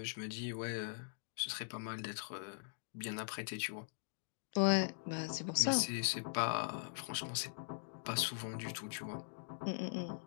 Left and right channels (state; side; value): silent; right; digital silence